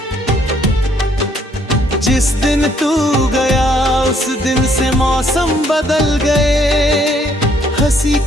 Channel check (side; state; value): both; normal; correlation 0.66